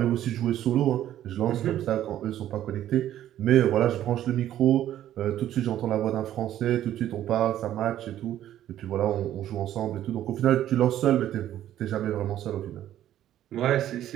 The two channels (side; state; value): left; quieter; 12.1 dB